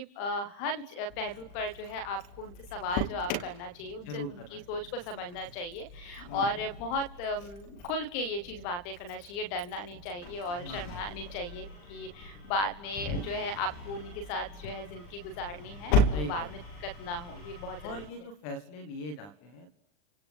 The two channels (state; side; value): late; right; 40 ms